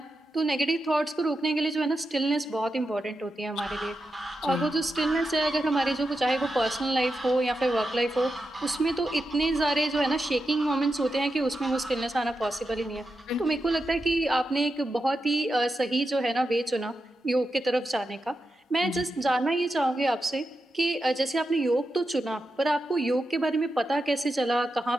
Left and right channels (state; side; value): normal; both; correlation 0.88